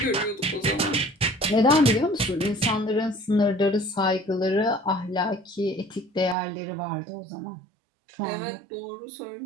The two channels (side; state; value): left; drops out; at 6.4 s